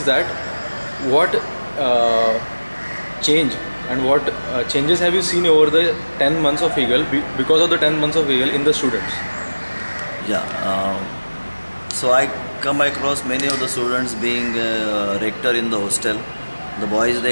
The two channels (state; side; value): inverted; both; correlation -1.00